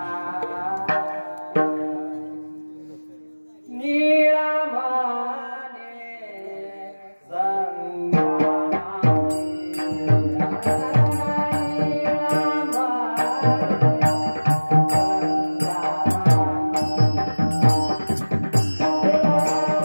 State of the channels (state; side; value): inverted; both; correlation -1.00